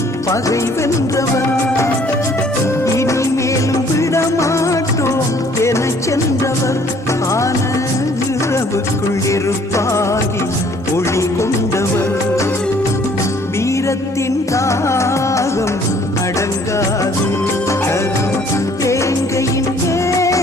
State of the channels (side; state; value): both; normal; correlation 0.59